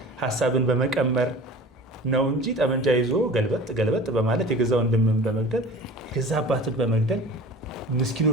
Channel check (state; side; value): normal; both; correlation 0.40